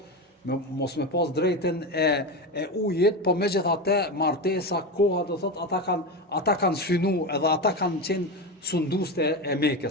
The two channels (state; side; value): normal; both; correlation 0.19